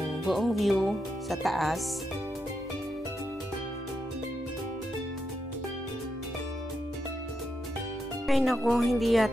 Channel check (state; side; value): normal; both; correlation 0.84